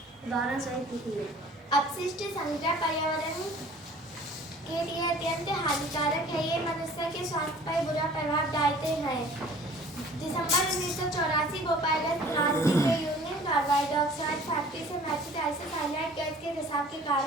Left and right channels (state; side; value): normal; both; correlation 0.49